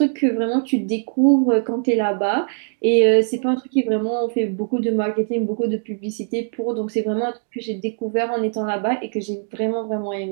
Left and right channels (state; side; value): silent; left; digital silence